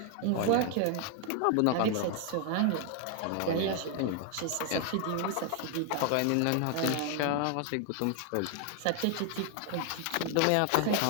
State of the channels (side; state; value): both; different; correlation 0.00